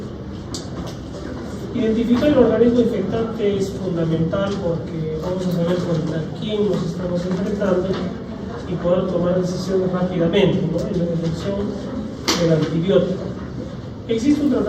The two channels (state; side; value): identical; both; correlation 1.00